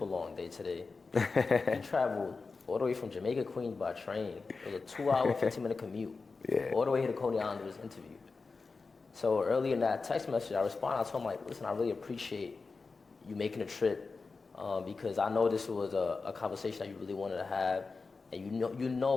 long day today. He traveled all the way from Jamaica, Queens by train. It was a 2-hour, 15-minute commute. All the way here to Coney Island to this interview. So early in that text message, I responded. I told him, like, listen, I really appreciate you making a trip because I know this was a conversation that you really wanted to have, and you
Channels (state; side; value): quieter; right; 4.3 dB